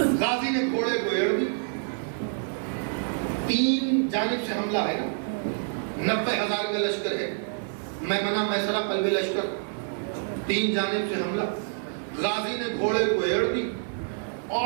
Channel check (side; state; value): left; silent; 60 dB below the other